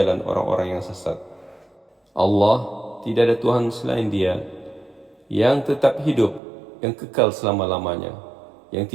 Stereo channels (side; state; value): left; drops out; at 6.4 s